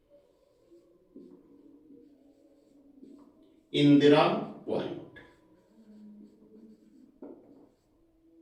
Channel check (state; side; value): identical; both; correlation 1.00